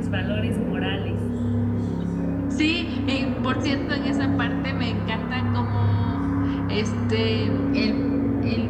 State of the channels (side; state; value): both; identical; correlation 1.00